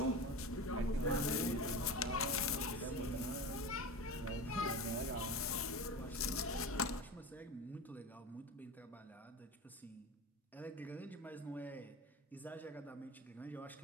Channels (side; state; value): both; normal; correlation 0.29